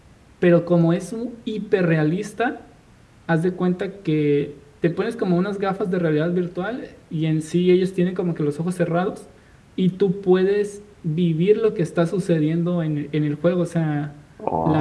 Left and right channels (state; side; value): identical; both; correlation 1.00